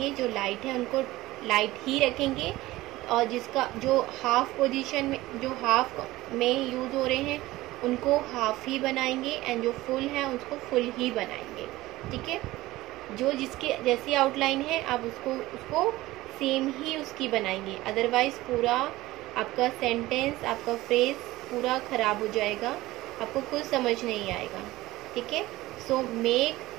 जो लाइट है उनको लाइट ही रखेंगे, और जिसका जो हाफ पोजीशन में जो हाफ में यूज हो रहे हैं उनको हाफ ही बनाएंगे एंड जो फुल है उसको फुल ही बनाएंगे. ठीक है, जो जिसके जैसी आउटलाइन है आप उसको सेम ही उसकी बनाएंगे, अदरवाइज पूरा आपका सेंटेंस आपका फ्रेज पूरा खराब हो जाएगा, आपको कुछ समझ नहीं आएगा. ठीक है, so make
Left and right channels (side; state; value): left; quieter; 17.8 dB